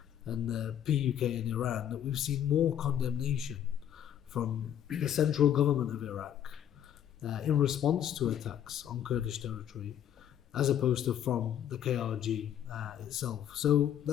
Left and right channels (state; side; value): quieter; right; 10.0 dB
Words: and the PUK in Iran, that we've seen more condemnation from the central government of Iraq in response to attacks on Kurdish territory, as opposed to from the KRG itself. So